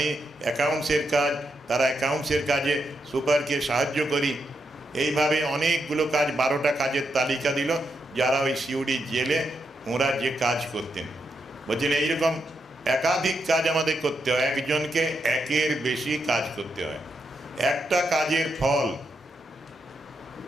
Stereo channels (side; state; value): both; normal; correlation 0.83